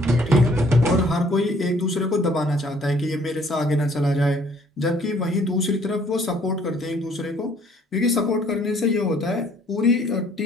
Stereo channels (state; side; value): normal; both; correlation 0.60